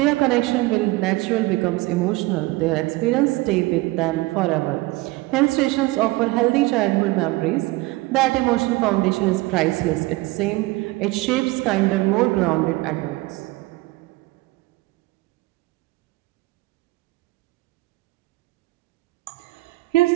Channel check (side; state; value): left; quieter; 20.8 dB